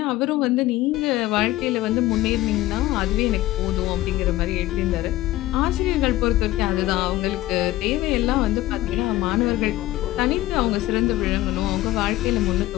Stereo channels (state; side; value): quieter; right; 16.3 dB